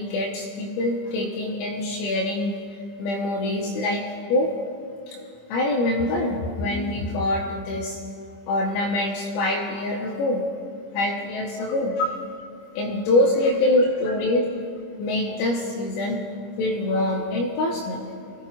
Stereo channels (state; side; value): late; right; 25 ms